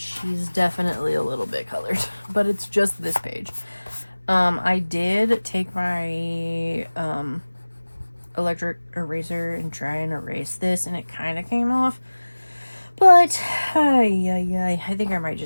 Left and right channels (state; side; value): inverted; both; correlation -1.00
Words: definitely a little bit colored. But it's just this page. I did take my electric eraser and try and erase this, and it kind of came off. But I think I might